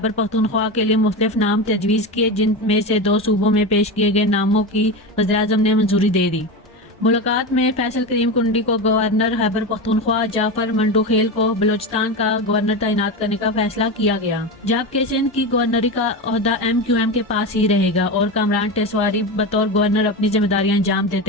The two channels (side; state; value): both; normal; correlation 0.20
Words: पख्तूनख्वा के लिए मुख्तलिफ नाम तजवीज़ किए, जिनमें से 2 सूबों में पेश किए गए नामों की वज़ीर आज़म ने मंजूरी दे दी। मुलाकात में फैसल करीम कुंडी को गवर्नर खैबर पख्तूनख्वा, जाफर मंडोखेल को बलूचिस्तान का गवर्नर तैनात करने का फैसला किया गया, जबकि सिंध की गवर्नरी का ओहदा MQM के पास ही रहेगा और कामरान टेसवारी बतौर गवर्नर अपनी जिम्मेदारियां अंजाम